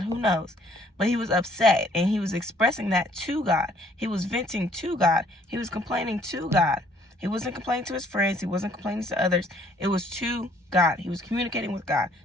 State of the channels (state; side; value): normal; both; correlation 0.62